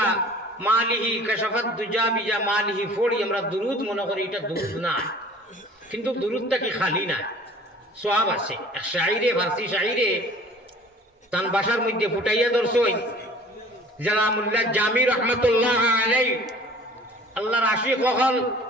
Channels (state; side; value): normal; both; correlation 0.47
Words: মালিহি কাশাফাত দুজা বিজা মালিহি পড়ি আমরা দুরুদ মনে করি এটা দুরুদ না কিন্তু দুরুদটা কি খালি না সওয়াব আছে এক শায়রে ফারসি শায়রে তান ভাষার মধ্যে ফুটাইয়া দর্শই জালামুল্লাহ জামি রহমাতুল্লাহ আলাইহি আল্লাহর আশিক হল